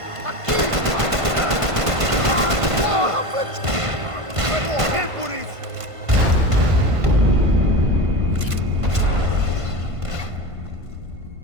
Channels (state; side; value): late; left; 1.5 ms